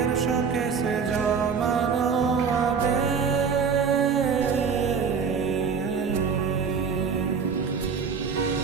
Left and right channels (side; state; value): left; quieter; 6.0 dB